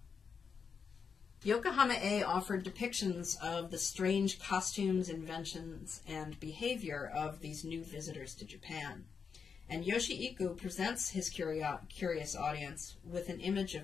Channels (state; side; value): quieter; right; 6.0 dB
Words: Yokohama-e offered depictions of the strange costumes, inventions, and behavior of these new visitors to Japan. And Yoshii-iku presents his curious audience with an image